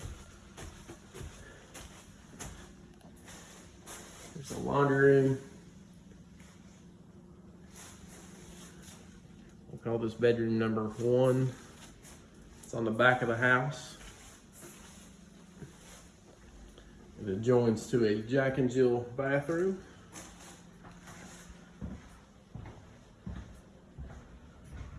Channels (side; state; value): both; identical; correlation 1.00